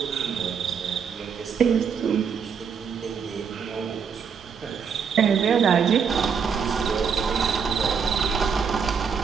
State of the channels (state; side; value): quieter; left; 6.5 dB